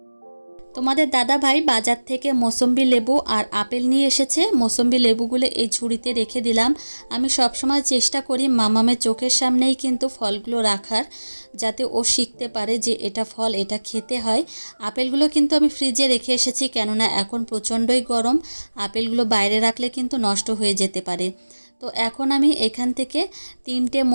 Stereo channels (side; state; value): both; inverted; correlation -1.00